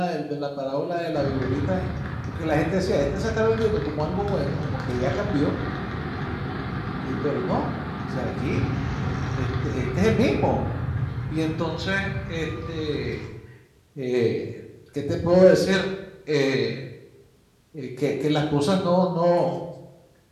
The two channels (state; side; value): identical; both; correlation 1.00